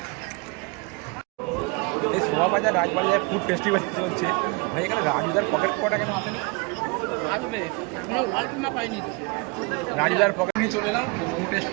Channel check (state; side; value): quieter; left; 29.7 dB